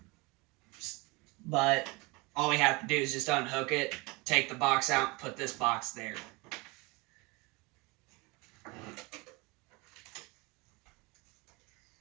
But all we have to do is just unhook it, take the box out, and put this box there.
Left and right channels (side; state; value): left; quieter; 26.0 dB